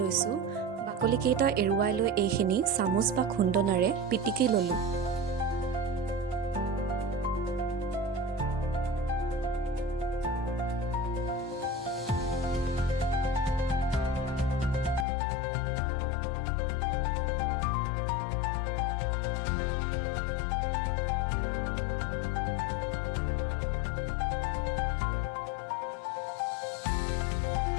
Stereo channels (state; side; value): drops out; right; at 15.1 s